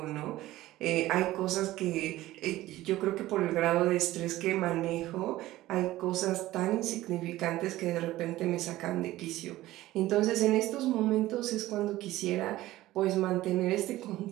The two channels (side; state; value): left; quieter; 16.2 dB